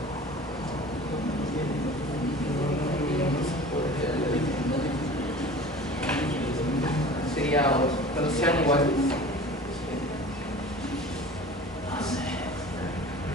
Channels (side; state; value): both; normal; correlation 0.40